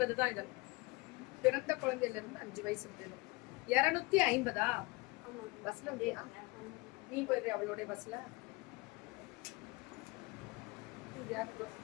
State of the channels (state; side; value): quieter; right; 24.4 dB